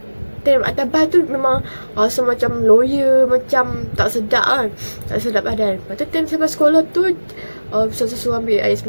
Time atas bas tu memang rasa macam lawyer, macam tak sedap kan. Tak sedap badan. Lepas tu time sampai sekolah tu, ustazah suruh ambil air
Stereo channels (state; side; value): inverted; both; correlation -1.00